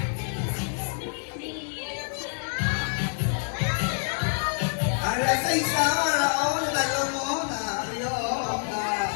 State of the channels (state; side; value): silent; right; 60 dB below the other